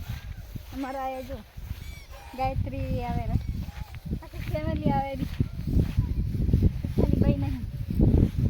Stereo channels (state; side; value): identical; both; correlation 1.00